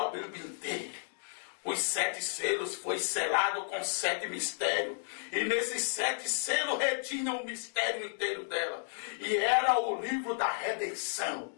Bíblia inteira. Os 7 selos foi selado com 7 mistérios. E nesses 7 selos retinham o mistério inteiro dela. E era o livro da redenção.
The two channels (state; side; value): silent; right; digital silence